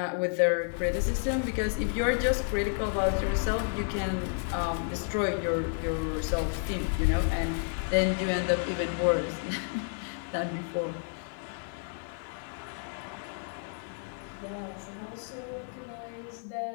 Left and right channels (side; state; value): right; silent; 57 dB below the other